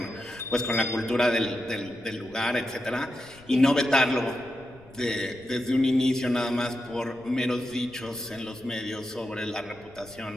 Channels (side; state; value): left; noise; rumble, 25 dB below the sound